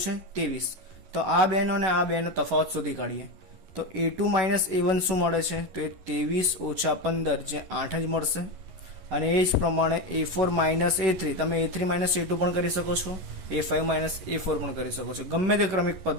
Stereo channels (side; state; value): left; late; 11 ms